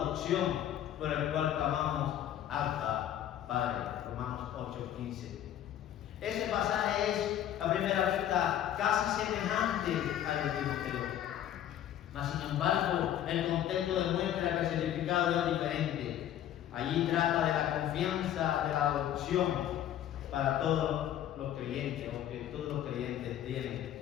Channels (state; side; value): quieter; right; 11.3 dB